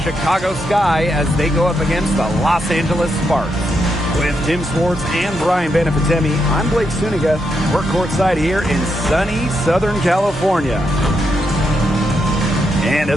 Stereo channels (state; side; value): normal; both; correlation 0.81